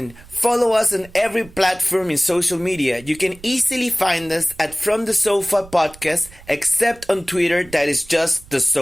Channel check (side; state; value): right; noise; rumble, 22 dB below the sound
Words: Follow us on every platform in social media. You can easily find us at From the Sofa Podcast, except on Twitter, that is just the